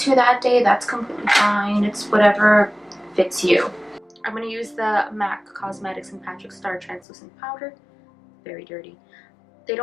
that day, that's completely fine. It's whatever fits you. I'm going to use the MAC Cosmetics and Patrick Starrr Translucent Powder. Very dirty. They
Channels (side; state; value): right; drops out; at 7.0 s